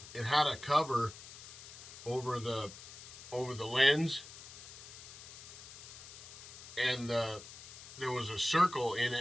it had a cover over the lens, and there was a circle in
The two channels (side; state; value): left; noise; hiss, 14 dB below the sound